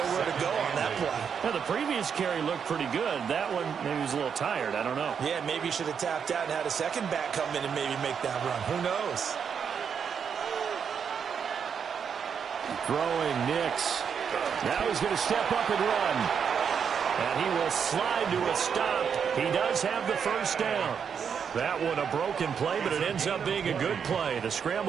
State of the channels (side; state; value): left; quieter; 7.1 dB